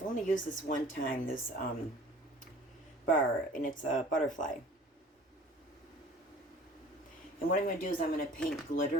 only used this one time, this bar, and it's a butterfly. And what I'm going to do is I'm going to paint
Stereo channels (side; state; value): both; normal; correlation 0.48